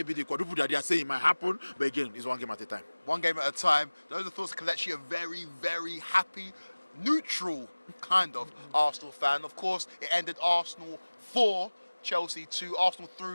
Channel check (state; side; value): inverted; both; correlation -1.00